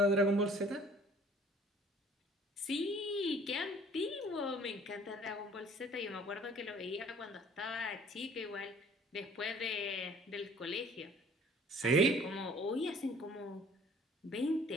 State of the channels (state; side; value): normal; both; correlation 0.53